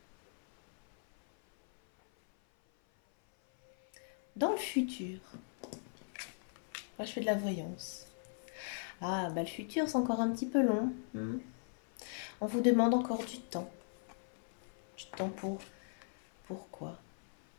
Dans le futur, moi je fais de la voyance. Ah, bah le futur, c'est encore un petit peu long. On vous demande encore du temps. Du temps pour... Pourquoi?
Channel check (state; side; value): silent; right; 52 dB below the other